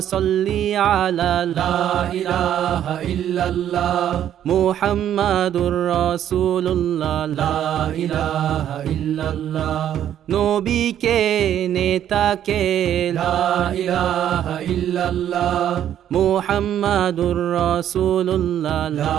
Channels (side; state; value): left; quieter; 10.6 dB